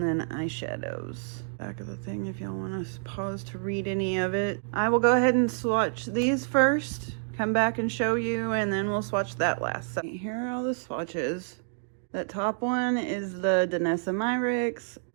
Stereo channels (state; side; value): silent; left; digital silence